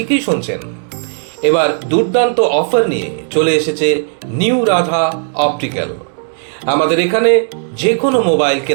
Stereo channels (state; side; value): silent; left; 57 dB below the other